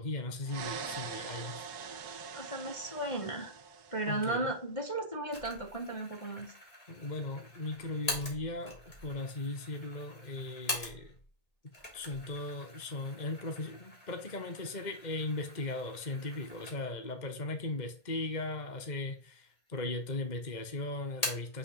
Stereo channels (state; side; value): late; right; 1.8 ms